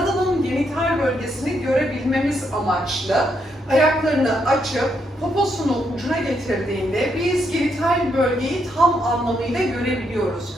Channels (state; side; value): normal; both; correlation 0.77